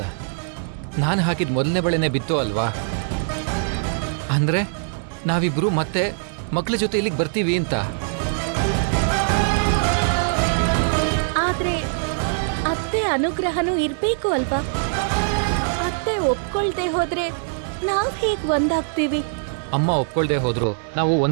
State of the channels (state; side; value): silent; left; 56 dB below the other